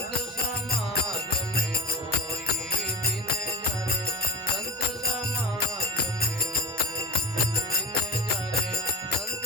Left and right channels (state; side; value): normal; both; correlation 0.28